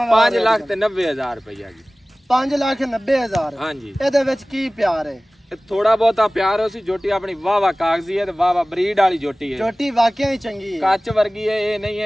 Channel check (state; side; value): normal; both; correlation 0.98